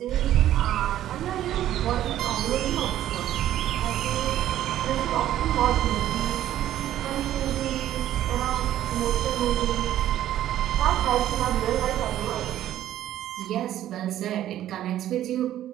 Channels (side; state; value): left; quieter; 12.4 dB